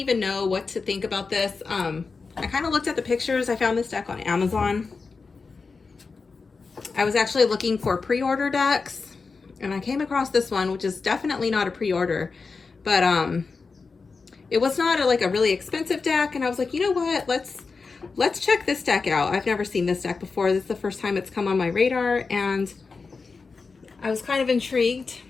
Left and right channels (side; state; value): right; quieter; 4.5 dB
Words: know what to think about this. I kind of looked at the pictures. I found this deck on Amazon. I was actually looking for pre-order decks, and I came across this one, which is definitely not a pre-order, but it was not like a really expensive deck. And I was like, you know what? Let's check this deck out. I've never seen this deck before. This is the first time it's come on my radar, and I was kind of intrigued.